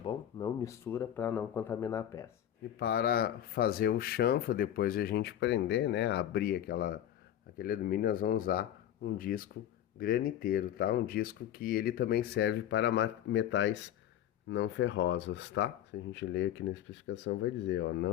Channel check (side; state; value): right; quieter; 11.1 dB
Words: Não mistura para não contaminar a peça. E para fazer o chanfro, depois de a gente prender, né, abrir aquele alumínio, nós vamos usar um disco graniteiro, tá? Um disco que ele também serve para metais não ferrosos, tá? Se a gente ler aqui na especificação vai dizer, ó,